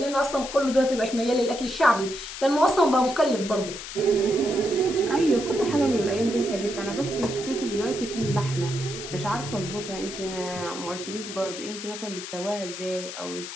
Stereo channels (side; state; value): left; noise; hiss, 9 dB below the sound